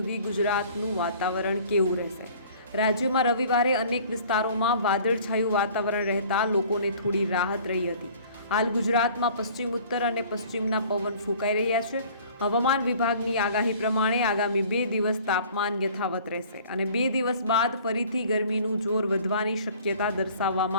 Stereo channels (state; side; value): inverted; both; correlation -0.50